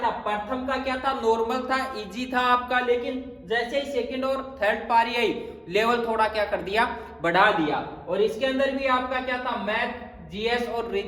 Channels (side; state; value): both; identical; correlation 1.00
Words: प्रथम का क्या था, नॉर्मल था, इजी था आपका, लेकिन जैसे ही सेकंड और थर्ड पारी आई लेवल थोड़ा क्या कर दिया, बढ़ा दिया। और इसके अंदर भी आपका क्या था, मैथ, जीएस और